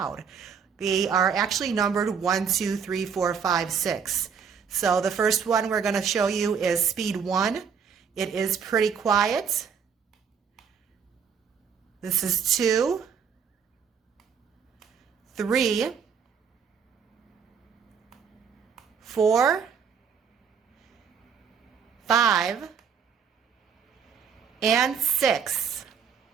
They are actually numbered 1, 2, 3, 4, 5, 6. So the first one we're going to show you is speed 1. It is pretty quiet. This is 2, 3, 4, 5, and 6.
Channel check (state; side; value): quieter; left; 6.9 dB